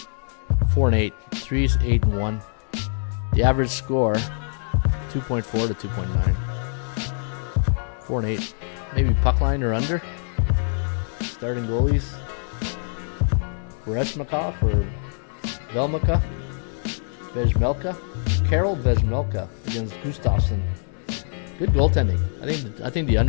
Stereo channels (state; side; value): silent; right; digital silence